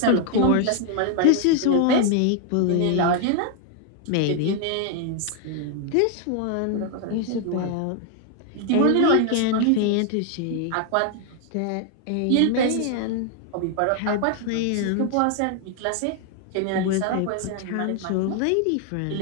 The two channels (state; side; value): different; both; correlation 0.00